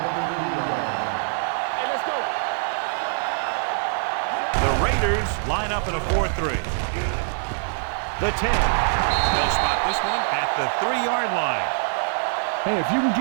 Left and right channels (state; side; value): silent; left; digital silence